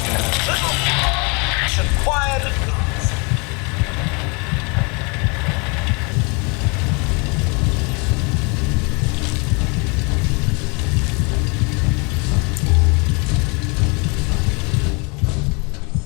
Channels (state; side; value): quieter; right; 31.5 dB